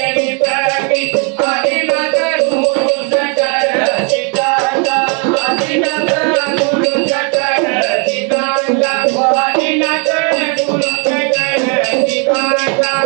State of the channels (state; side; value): quieter; left; 37.1 dB